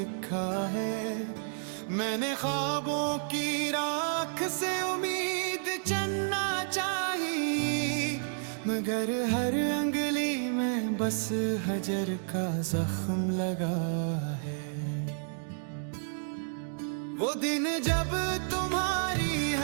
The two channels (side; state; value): left; silent; digital silence